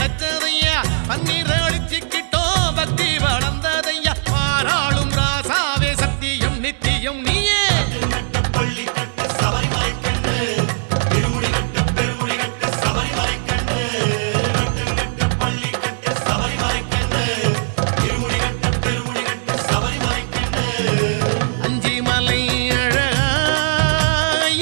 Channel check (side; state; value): left; silent; digital silence